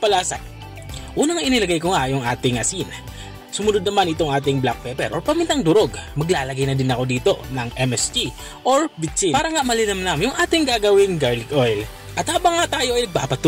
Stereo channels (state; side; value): identical; both; correlation 1.00